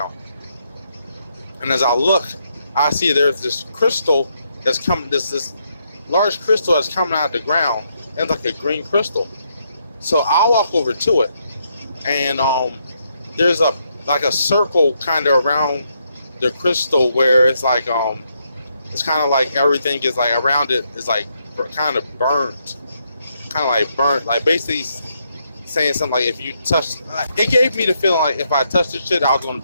And as I look, I see there's this crystal that's coming, this large crystal that's coming out of the ground, and it's like a green crystal. So I'll walk over to it, and there's a circle kind of around the crystal, where it's like it's kind of like everything is like around it is like kind of burnt, like basically saying something like, if you touch, it gave me the feeling like if I touched this shit, I was gonna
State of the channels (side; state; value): both; inverted; correlation -0.77